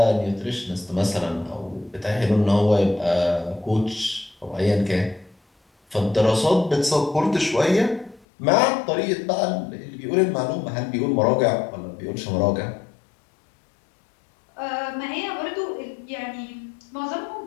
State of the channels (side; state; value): right; drops out; at 8.2 s